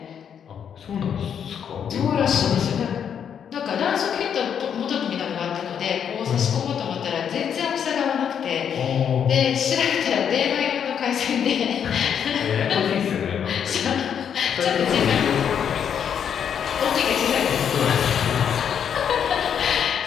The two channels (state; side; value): quieter; right; 8.1 dB